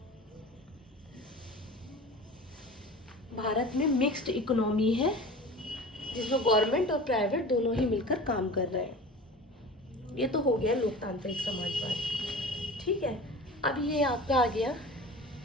भारत में मिक्स्ड इकोनॉमी है, जिसमें गवर्नमेंट और प्राइवेट दोनों ही मिलकर काम कर रहे हैं। ये तो हो गया लोकतांत्रिक समाजवाद, ठीक है। अब ये आपका आ गया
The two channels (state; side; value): normal; both; correlation 0.37